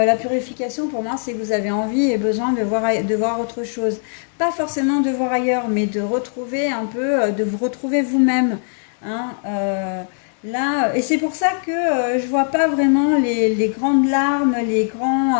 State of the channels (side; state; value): right; silent; digital silence